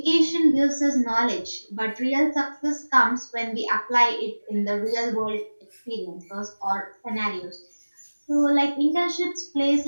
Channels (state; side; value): inverted; both; correlation -1.00